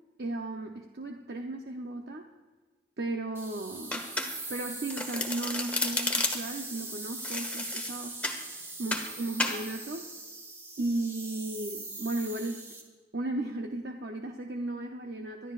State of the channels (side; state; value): both; normal; correlation 0.37